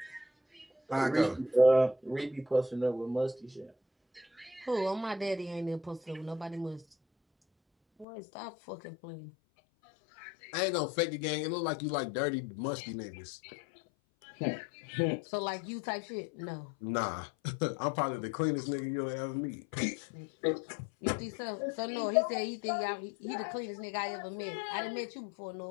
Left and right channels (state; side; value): drops out; right; at 8.1 s